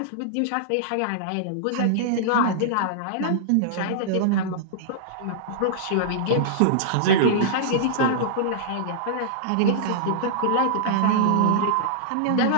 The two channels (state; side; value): different; both; correlation -0.02